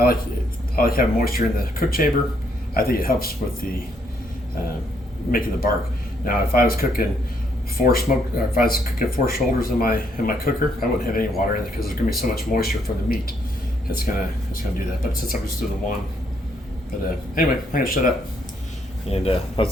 like having moisture in the cook chamber. I think it helps with the making the bark. Now, if I was cooking if I was cooking 4 shoulders in my cooker, I wouldn't have any water in it because there's going to be so much moisture from the meat. It's gonna do that. But since I'm just doing the one, anyway, I'm gonna shut up, and I'll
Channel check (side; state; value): both; normal; correlation 0.72